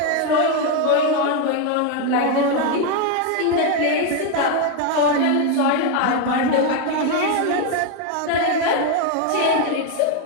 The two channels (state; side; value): different; both; correlation 0.01